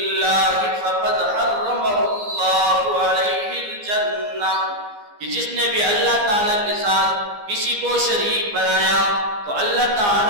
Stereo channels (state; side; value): late; left; 15 ms